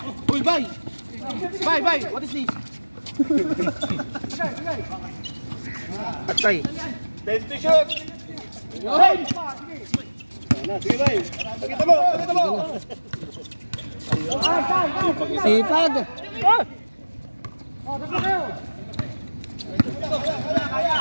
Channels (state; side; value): inverted; both; correlation -1.00